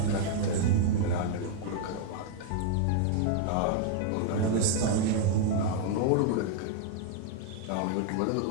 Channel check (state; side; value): different; both; correlation 0.00